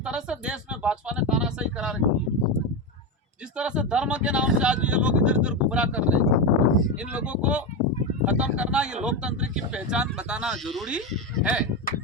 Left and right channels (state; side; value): normal; both; correlation 0.14